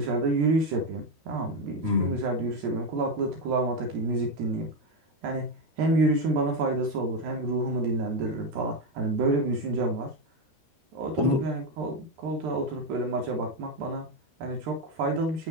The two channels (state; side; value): late; left; 13 ms